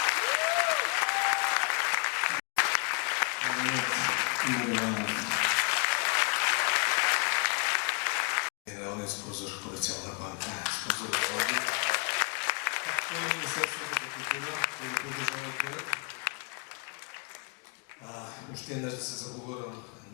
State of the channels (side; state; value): right; quieter; 32.8 dB